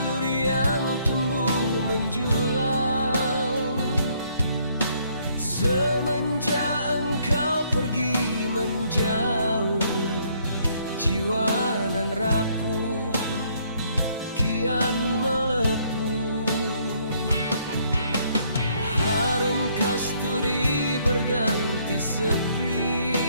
yang tumbuh menjulang. Semenjak engkau pergi menjauh, jiwa nan rapuh kian melepuh. Harum kasturi berganti sepi,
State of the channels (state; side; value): inverted; both; correlation -0.67